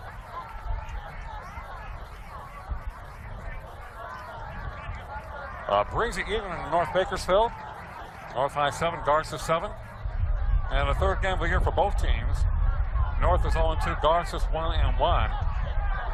Brings it even in North Bakersfield. North High 7, Garces 7. And the 3rd game of the year for both teams. North is 0-2, Garces 1-1.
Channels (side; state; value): both; identical; correlation 1.00